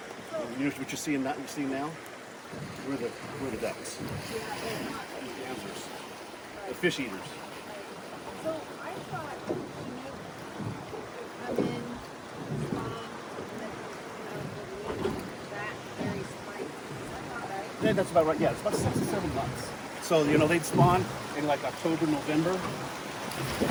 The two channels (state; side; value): identical; both; correlation 1.00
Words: And what you're seeing now, we're the ducks. The gansers, the fish eaters. So I thought come in, spawn, and then that very spike. Is that about right? Yeah, that's about right. Yeah, it's about 6 to 7 months. So they'd spawn in like October, November. And